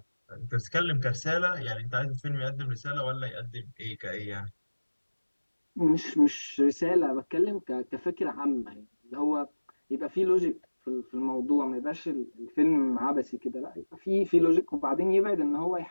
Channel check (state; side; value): inverted; both; correlation -1.00